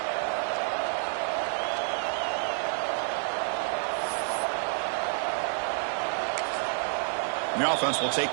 The offense will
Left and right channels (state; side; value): silent; left; 59 dB below the other